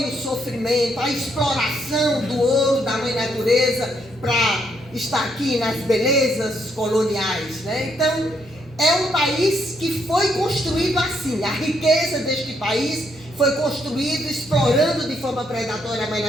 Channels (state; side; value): normal; both; correlation 0.74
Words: o sofrimento, a exploração do ouro da mãe natureza para estar aqui nas belezas coloniais, né? Então, é um país que foi construído assim. A riqueza deste país foi construído explorando de forma predatória a mãe